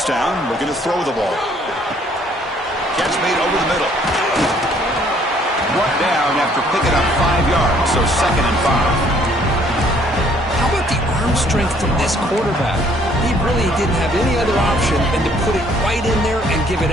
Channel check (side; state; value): both; normal; correlation 0.62